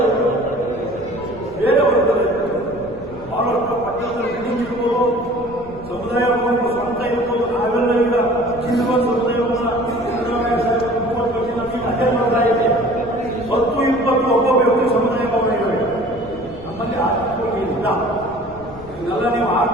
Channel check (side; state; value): left; noise; rumble, 18 dB below the sound